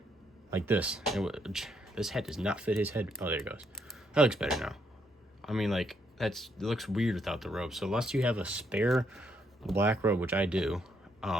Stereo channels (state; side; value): normal; both; correlation 0.74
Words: Like this. This head does not fit his head. Oh, there it goes. That looks better now. I mean, like, it looks weird without the robe. So unless you have a spare black robe, which I do,